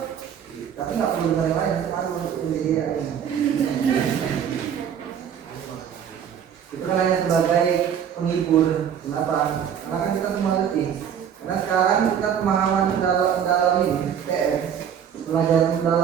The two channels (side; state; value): left; quieter; 8.5 dB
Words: Tapi nggak perlu dengan yang lain, cuma untuk jadi AI. Itu kan hanya sebagai penghibur. Kenapa? Karena kan kita semua letih. Karena sekarang kita pemahaman dalam ini, TS, belajar